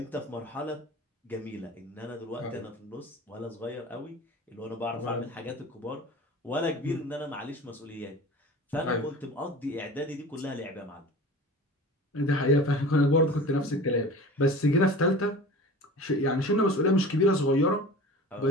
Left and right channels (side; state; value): both; normal; correlation 0.38